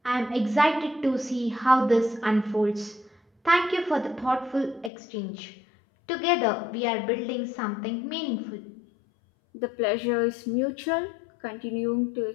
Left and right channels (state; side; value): drops out; right; at 4.9 s